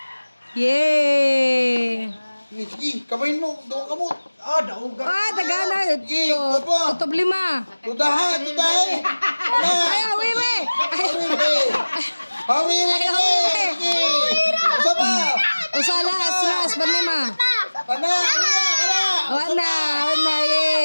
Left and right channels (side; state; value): both; inverted; correlation -1.00